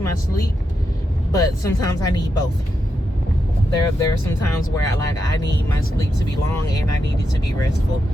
my sleep, but sometimes I need both. There are some times where I need my sleep to be long and I need it to be restful.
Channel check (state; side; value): normal; both; correlation 0.85